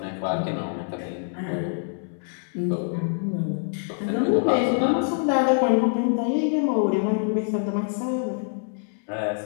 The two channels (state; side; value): silent; right; 62 dB below the other